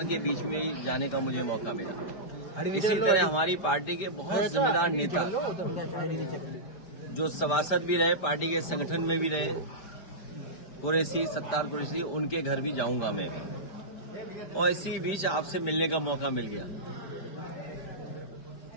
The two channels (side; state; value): right; late; 5.0 ms